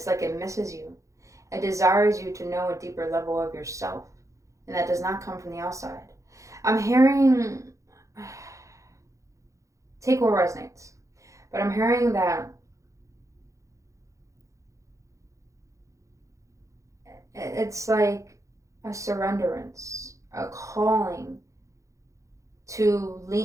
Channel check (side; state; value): left; late; 0.15 ms